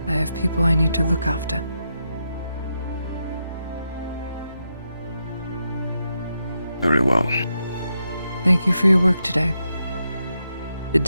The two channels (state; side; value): inverted; both; correlation -0.84